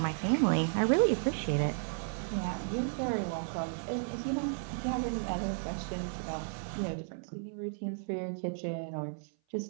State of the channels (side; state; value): left; silent; 55 dB below the other